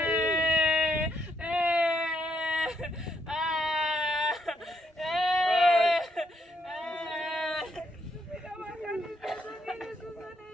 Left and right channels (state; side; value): normal; both; correlation 0.75